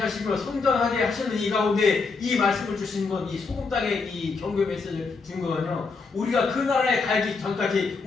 성장하게 하시는 이 가운데 이 말씀을 주신 건, 이 소금 땅에 이 경고 메시지를 준 거는요, 우리가 그 나라에 가기 전까지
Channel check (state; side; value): quieter; right; 4.5 dB